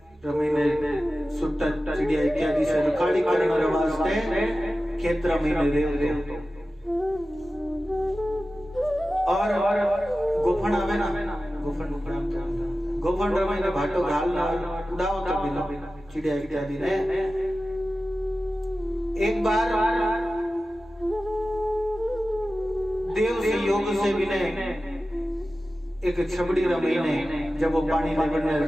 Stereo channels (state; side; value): normal; both; correlation 0.95